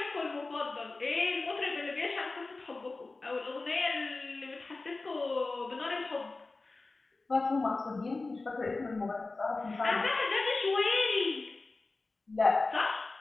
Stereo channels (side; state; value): right; quieter; 3.5 dB